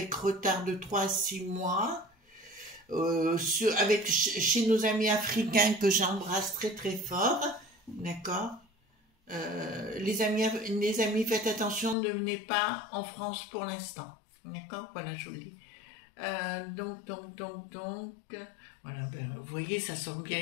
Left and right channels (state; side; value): drops out; right; at 12.0 s